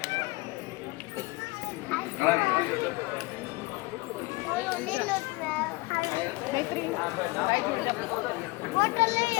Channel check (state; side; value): quieter; right; 24.3 dB